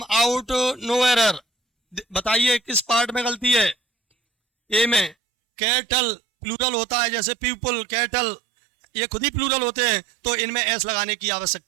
out, no error. बताइए किस पार्ट में गलती है? ए में। कैटल प्लूरल होता है, जैसे पीपल, कैटल ये खुद ही प्लूरल होते हैं, तो इनमें एस लगाने की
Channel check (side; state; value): left; drops out; at 5.2 s